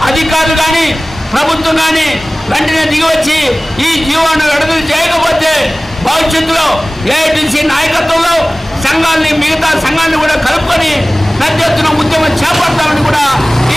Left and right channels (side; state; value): both; normal; correlation 0.98